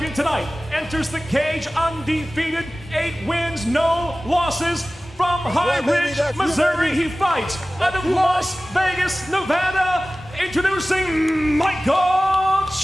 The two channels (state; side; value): normal; both; correlation 0.97